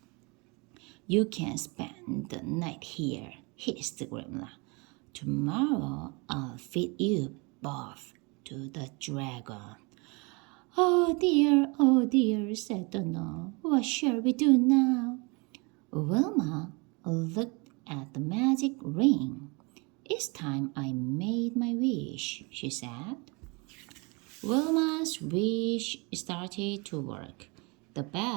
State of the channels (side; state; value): left; quieter; 29.2 dB